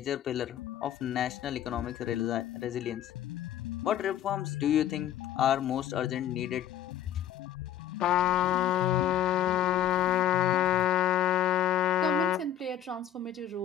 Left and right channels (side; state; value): right; quieter; 10.7 dB